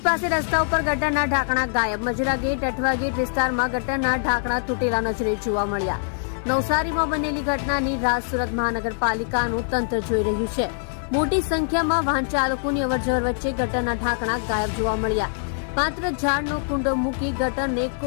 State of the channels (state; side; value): silent; right; digital silence